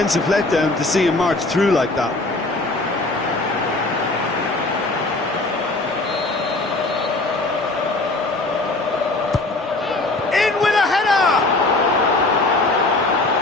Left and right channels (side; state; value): right; quieter; 3.0 dB